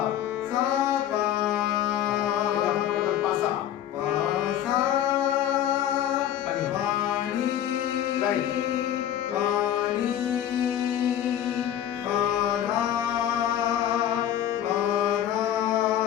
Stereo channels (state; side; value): quieter; right; 10.9 dB